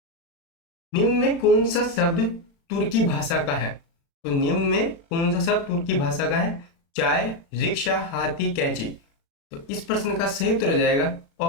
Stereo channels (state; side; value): late; right; 36 ms